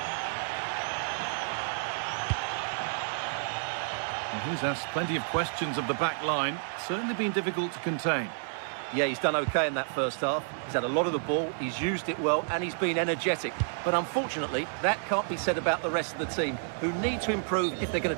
He's asked plenty of questions of the back line. Certainly been difficult to contain. Yeah, he's done okay in that first half. He's had a lot of the ball, he's used it well, and he's been energetic. But unfortunately, that can't be said about the rest of the team, who need to improve if they're going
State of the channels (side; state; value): left; silent; 58 dB below the other